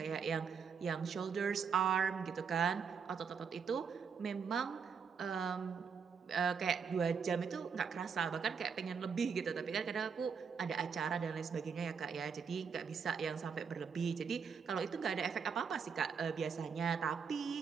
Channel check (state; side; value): quieter; left; 6.3 dB